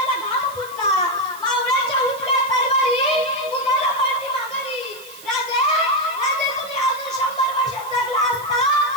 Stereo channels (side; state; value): right; noise; hiss, 18 dB below the sound